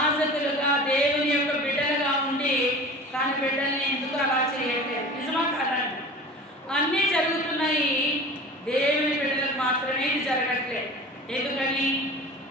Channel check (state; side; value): normal; both; correlation 0.38